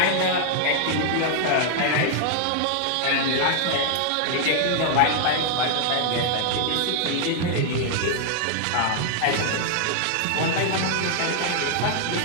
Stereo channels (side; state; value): both; different; correlation 0.00